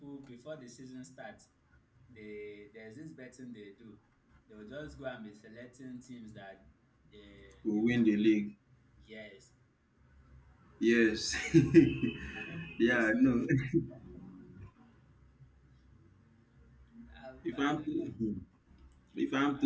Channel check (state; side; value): identical; both; correlation 1.00